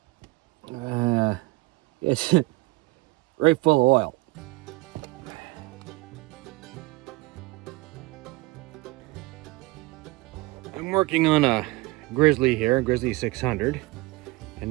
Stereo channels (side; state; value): left; quieter; 22.5 dB